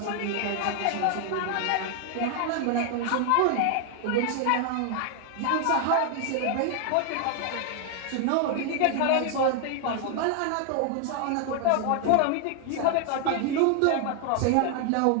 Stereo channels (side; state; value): both; different; correlation 0.00